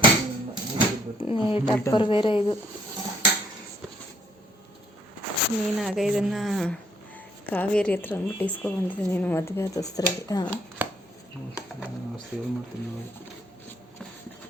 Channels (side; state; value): both; normal; correlation 0.67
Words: ಟಪ್ಪರ್ ಬೇರೆ ಇದು. ನೀನಾಗ ಇದನ್ನು ಕಾವೇರಿ ಹತ್ರ ಅಂದ್ಬಿಟ್ಟು ಇಸ್ಕೊಬಂದಿದ್ದೆ ನೀನು ಮದುವೆ ಆದ ಹೊಸ್ತ್ರಲ್ಲಿ.